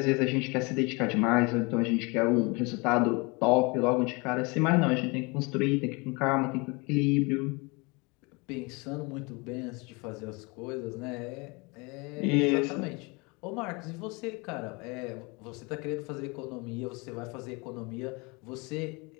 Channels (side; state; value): right; quieter; 28.2 dB